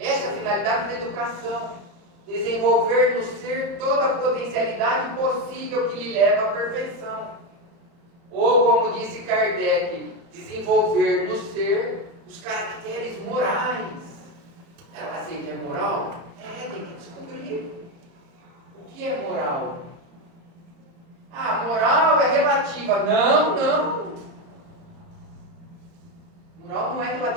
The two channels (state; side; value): late; left; 30 ms